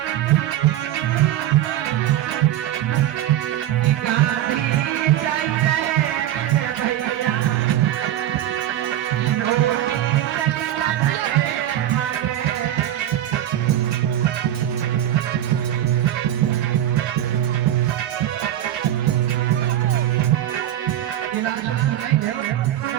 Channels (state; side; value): quieter; left; 12.3 dB